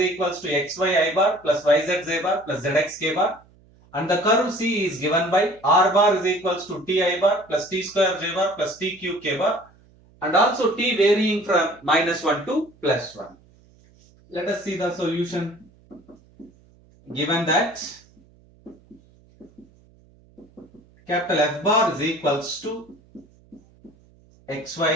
to xy I bar plus yz z bar plus zx k bar. And the curve C is given by r bar is equals to t I bar plus t square j bar plus t cube k bar, and also t varying from -1 to +1. Let us see the solution. Given that capital F bar is equals to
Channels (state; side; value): noise; right; hum, 29 dB below the sound